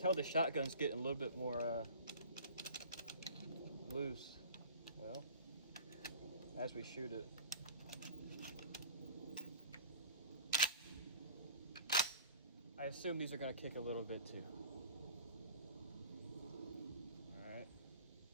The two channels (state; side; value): inverted; both; correlation -0.43